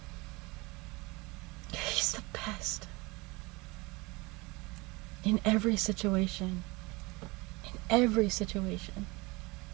he's the best in every situation. In every situation.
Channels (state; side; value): quieter; left; 24.8 dB